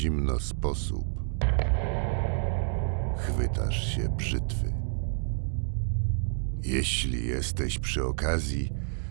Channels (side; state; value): left; silent; digital silence